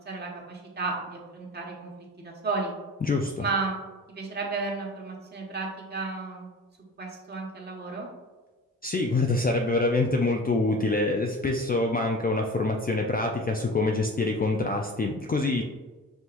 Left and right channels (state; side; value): normal; both; correlation 0.39